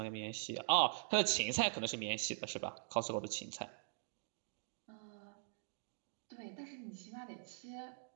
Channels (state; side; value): silent; left; digital silence